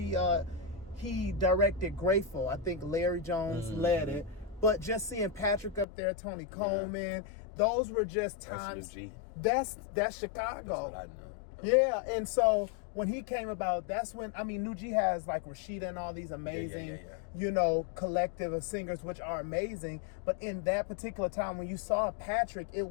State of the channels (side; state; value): right; drops out; at 5.9 s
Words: directed Grateful. I think Larry Jones led it, but just seeing Patrick up there, Tony Coleman, those were just times. That's Chicago. That's what I know. Yeah, and so when he came about, that's when, New G has like Rashida and all these amazing, collective of singers, which are amazing. But in that particular time, when you saw Patrick, it